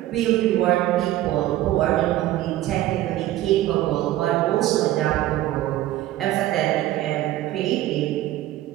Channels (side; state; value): left; quieter; 14.7 dB